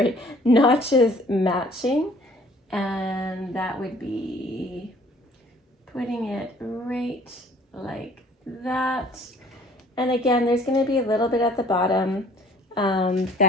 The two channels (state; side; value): normal; both; correlation 0.55